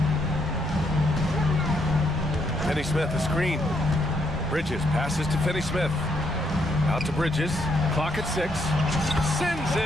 Finney-Smith, a screen. Bridges passes to Finney-Smith. Out to Bridges. Clock at 6. Sends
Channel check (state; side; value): normal; both; correlation 0.75